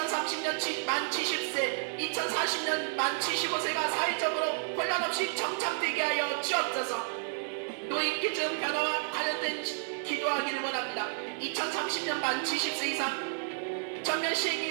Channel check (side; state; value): left; silent; 57 dB below the other